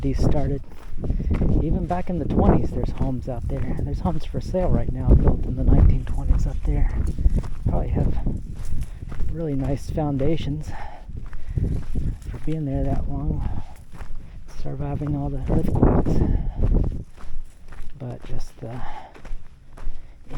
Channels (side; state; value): both; identical; correlation 1.00